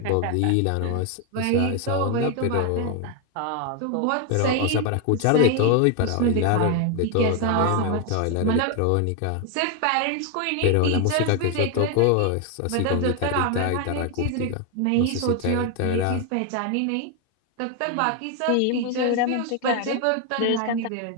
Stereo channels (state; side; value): different; both; correlation 0.01